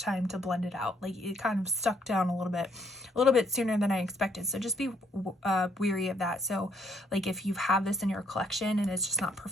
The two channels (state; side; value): normal; both; correlation 0.69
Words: time to blend it out. Like it kind of stuck down a little bit sooner than I expected. So just be weary of that. So like if you have this in your collection and it's just not